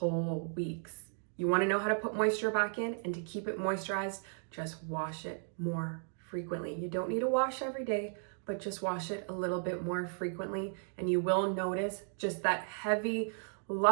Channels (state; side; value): silent; left; 54 dB below the other